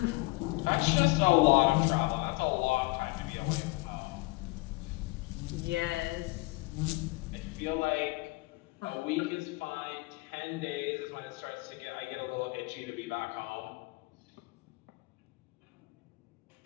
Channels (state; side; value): quieter; right; 24.2 dB